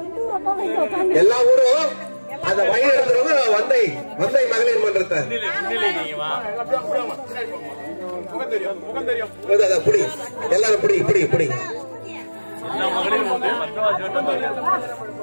எல்லா ஊரும் அந்த வழி நடத்துறவங்க வந்தை மகளிர் மன்றத்தை புடி எல்லாரும் புடி புடி புடி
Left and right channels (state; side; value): inverted; both; correlation -1.00